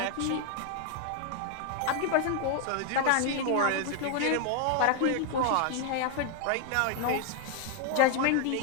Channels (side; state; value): both; different; correlation 0.00